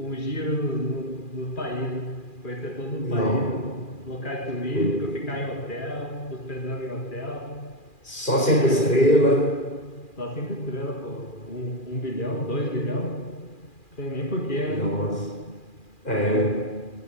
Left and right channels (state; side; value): late; right; 2.4 ms